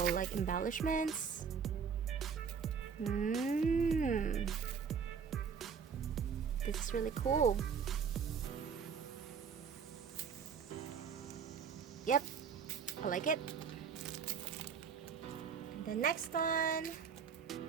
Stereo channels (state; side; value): quieter; left; 6.5 dB